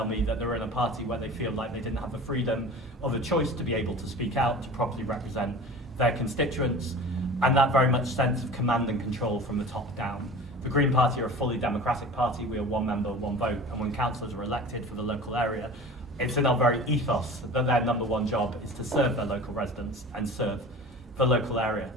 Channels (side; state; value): both; normal; correlation 0.38